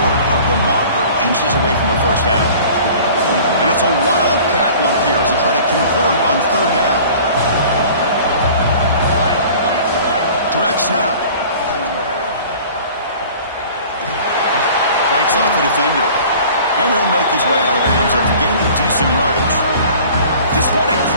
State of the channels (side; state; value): both; inverted; correlation -0.46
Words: of the marker, inches away from a first down. And it's a Wildcat look here as they try to convert on third down. Direct snap. Fights off the defender. And he'll make his way out of bounds after gaining decent yardage. Just what a